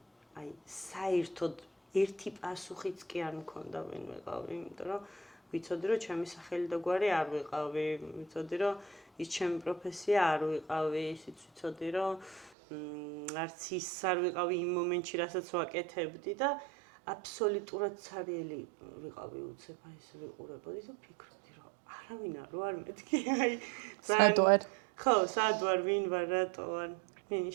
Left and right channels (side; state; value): left; drops out; at 12.5 s